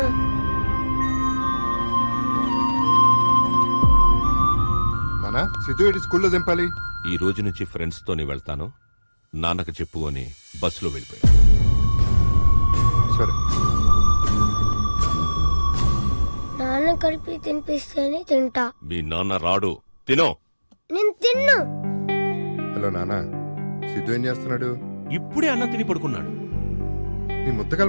నాన్న, సిద్ధు స్కూల్లో దింపాలి. ఈ రోజు నుంచి ఫ్రెండ్స్ తోనే వెళ్తాను, నాన్నకు చెప్పు అని బస్సులో వెళ్ళిపోయాడు. సరే. నాన్న కలిపి తినిపిస్తేనే తింటా. మీ నాన్న రాడు, తినో. నేను తిన్ను. హలో నాన్న, సిద్ధు ఏం చేస్తున్నాడు? ఇప్పుడే అన్నం తిని పడుకున్నాడు. నీ ముద్ద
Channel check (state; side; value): inverted; both; correlation -1.00